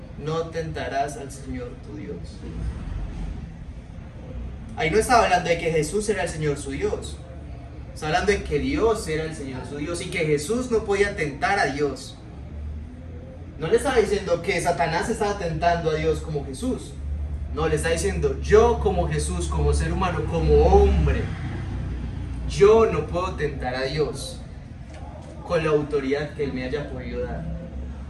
No tentarás al Señor tu Dios. Ahí no estaba hablando de que Jesús era el Señor su Dios. Está hablando de que Dios era el Señor su Dios y que Jesús no podía tentar a Dios. No le estaba diciendo que Satanás estaba tentando a Dios como Jesús. No, le está diciendo, yo como Jesús, como ser humano, como hombre, yo no puedo tentar a Dios con la autoridad que Él me haya podido dar.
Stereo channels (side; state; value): both; identical; correlation 1.00